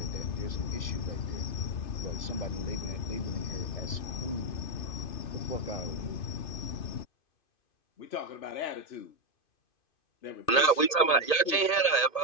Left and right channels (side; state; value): right; late; 1.8 ms